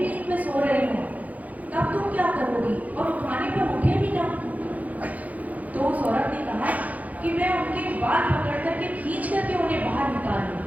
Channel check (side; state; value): left; late; 0.075 ms